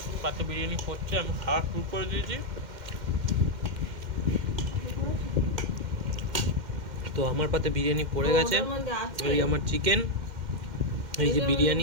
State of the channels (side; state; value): left; late; 2.1 ms